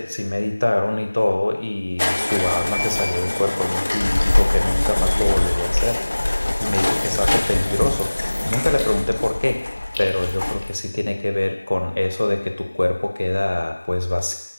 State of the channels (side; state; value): both; inverted; correlation -1.00